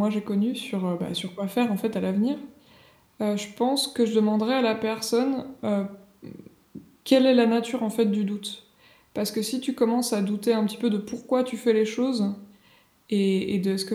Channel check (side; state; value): both; identical; correlation 1.00